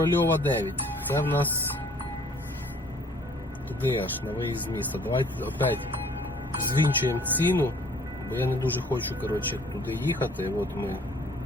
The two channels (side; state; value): both; normal; correlation 0.56